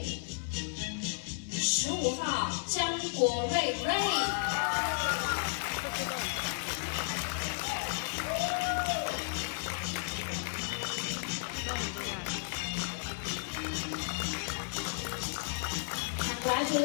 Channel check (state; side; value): silent; right; digital silence